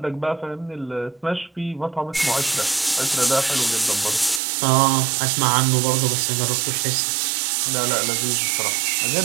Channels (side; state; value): left; drops out; at 4.4 s